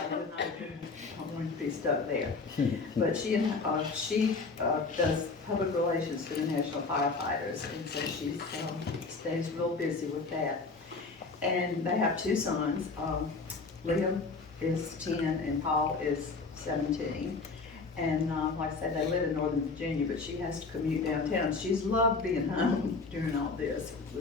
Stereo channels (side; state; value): right; quieter; 4.1 dB